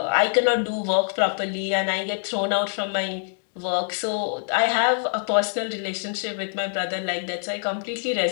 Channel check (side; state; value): right; silent; digital silence